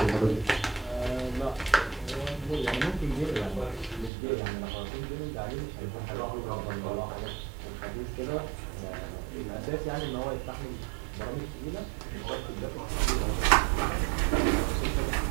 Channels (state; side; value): drops out; left; at 4.1 s